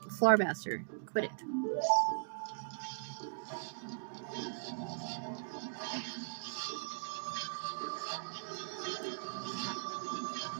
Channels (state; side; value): silent; left; digital silence